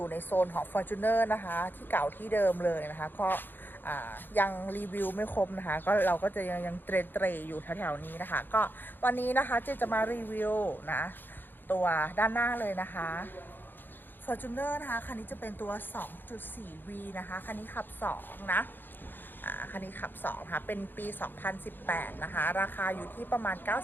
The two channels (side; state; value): right; late; 0.094 ms